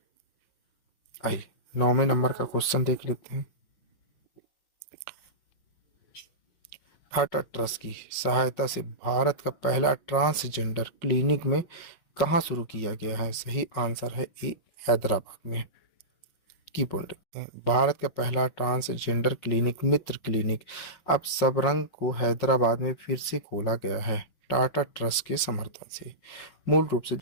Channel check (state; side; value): late; right; 5.5 ms